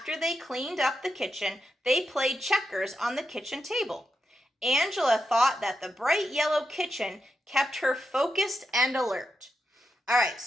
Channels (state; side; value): normal; both; correlation 0.86